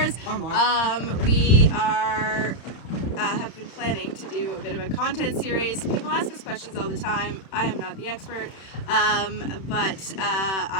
Or more. We are, have been planning to do a bit of a content series. People ask us questions all the time. I am not the expert, but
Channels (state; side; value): late; right; 31 ms